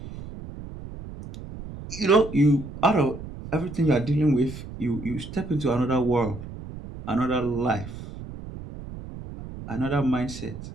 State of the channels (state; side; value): noise; right; rumble, 12 dB below the sound